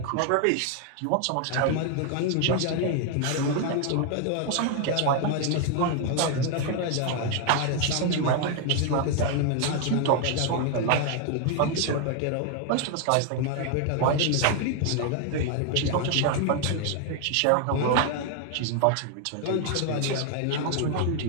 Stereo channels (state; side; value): different; both; correlation 0.00